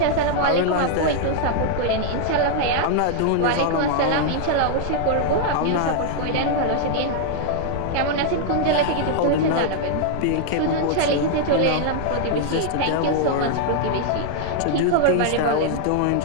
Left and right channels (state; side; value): different; both; correlation -0.01